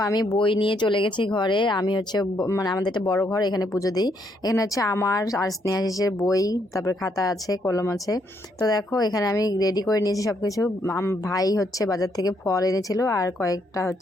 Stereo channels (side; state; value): both; normal; correlation 0.74